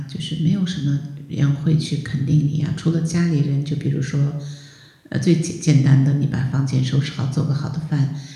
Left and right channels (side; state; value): both; identical; correlation 1.00